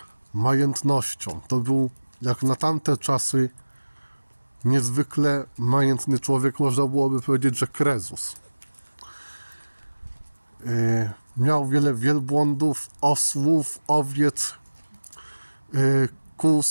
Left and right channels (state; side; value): inverted; both; correlation -1.00